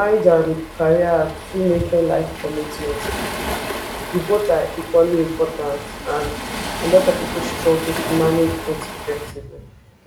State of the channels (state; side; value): identical; both; correlation 1.00